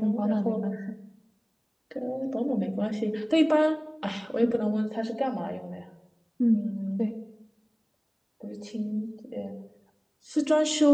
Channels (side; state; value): both; identical; correlation 1.00